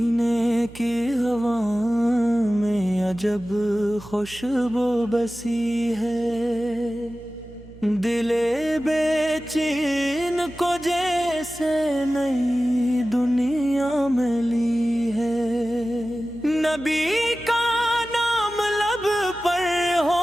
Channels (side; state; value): right; noise; hum, 20 dB below the sound